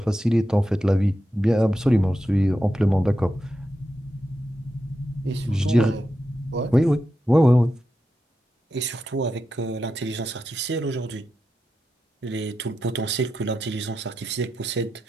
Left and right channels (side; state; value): both; normal; correlation 0.88